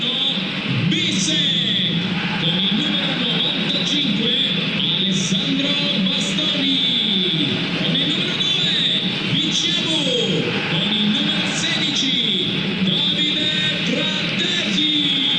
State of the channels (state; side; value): identical; both; correlation 1.00